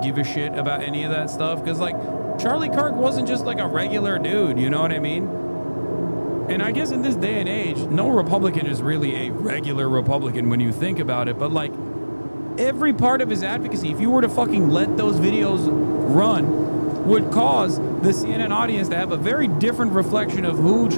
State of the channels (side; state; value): both; inverted; correlation -1.00